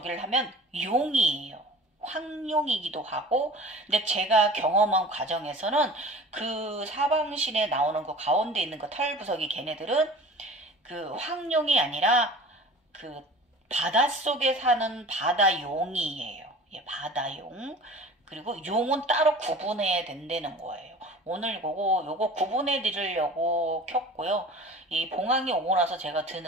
하면 용이에요. 황룡이기도 하고, 근데 제가 경험한 과정에서는 그 사방신에 나오는 그 가운데 있는 그 털부석이 걔네들은 그 황룡이 아니라 그 바닷속에 사는 바다용이에요. 예, 바다용. 그리고 용은 따로 구분해야 된다는 거예요. 오늘 요거 구분해 드리려고 켰고요. 이 봉황이 오고 나서 제가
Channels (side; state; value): both; normal; correlation 0.41